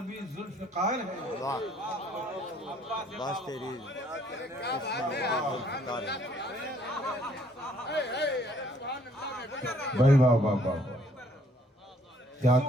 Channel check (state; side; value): normal; both; correlation 0.64